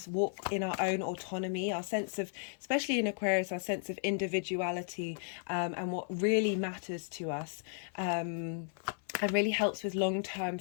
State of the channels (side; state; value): right; silent; 55 dB below the other